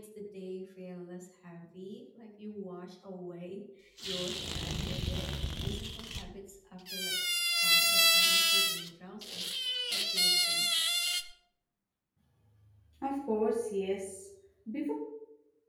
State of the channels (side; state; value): both; identical; correlation 1.00